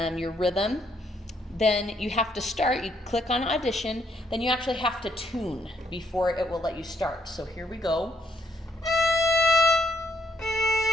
your rhythm, then you have to start, you click on audition, then you actually have to tune before it will let you start. So here we go.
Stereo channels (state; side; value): normal; both; correlation 0.71